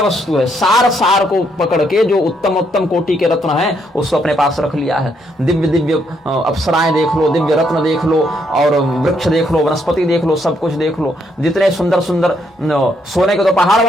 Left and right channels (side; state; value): both; normal; correlation 0.74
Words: वस्तु है, सार सार को पकड़ के जो उत्तम उत्तम कोटि के रत्न हैं उसको अपने पास रख लिया है। दिव्य दिव्य अप्सराएं देख लो, दिव्य रत्न देख लो, और वृक्ष देख लो, वनस्पति देख लो, सब कुछ देख लो। जितने सुंदर सुंदर सोने के तो पहाड़